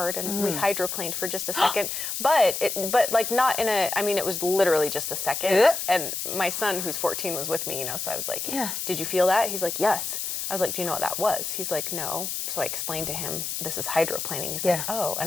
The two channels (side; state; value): left; noise; hiss, 3 dB below the sound